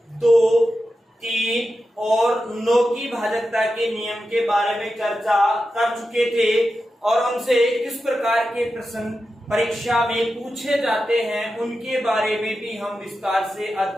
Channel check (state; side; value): normal; both; correlation 0.91